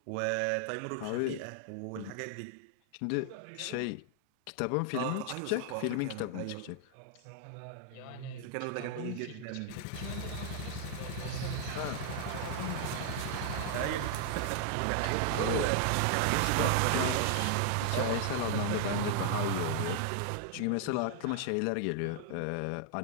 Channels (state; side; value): different; both; correlation 0.00